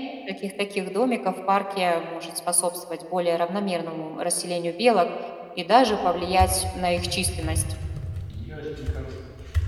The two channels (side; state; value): both; identical; correlation 1.00